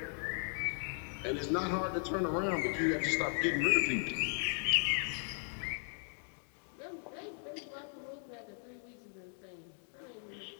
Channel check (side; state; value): right; silent; 53 dB below the other